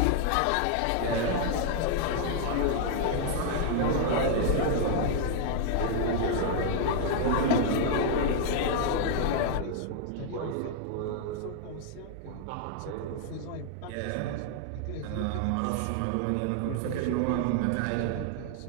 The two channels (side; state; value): both; different; correlation 0.00